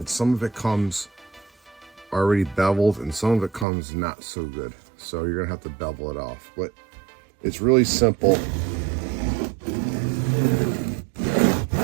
some of it comes already beveled and some of it comes not so good. So you're gonna have to bevel it off. But it's really simple.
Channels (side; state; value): left; drops out; at 3.7 s